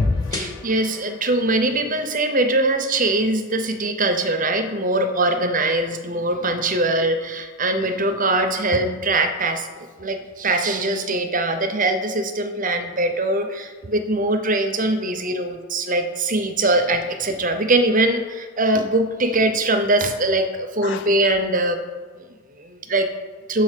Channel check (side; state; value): both; normal; correlation 0.12